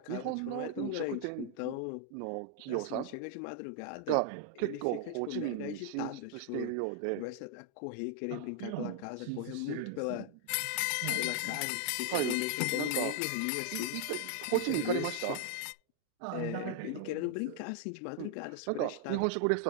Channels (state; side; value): different; both; correlation 0.00